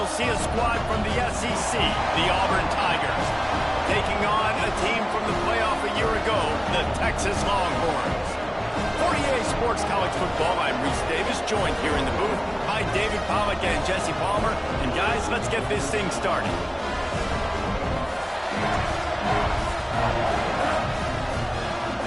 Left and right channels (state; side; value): identical; both; correlation 1.00